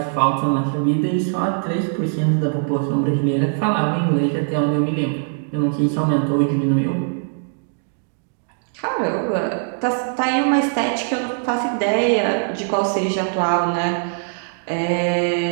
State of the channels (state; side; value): silent; left; digital silence